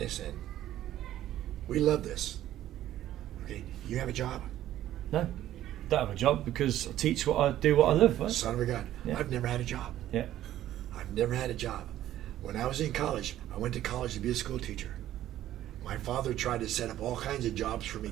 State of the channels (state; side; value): quieter; left; 13.0 dB